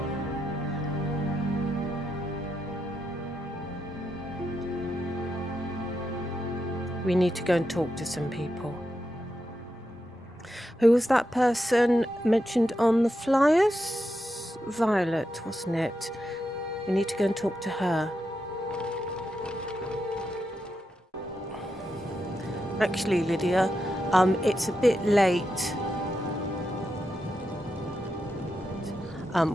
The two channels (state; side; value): normal; both; correlation 0.85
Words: We need to go and talk to some people. Who was that person mentioned on the flyers? Violet, wasn't it? We need to go and talk to her. Actually, Lydia, it's a bit late.